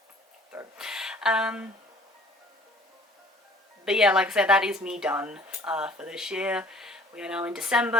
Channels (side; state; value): both; normal; correlation 0.53